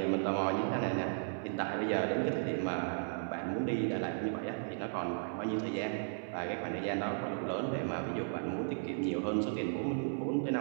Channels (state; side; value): silent; left; 54 dB below the other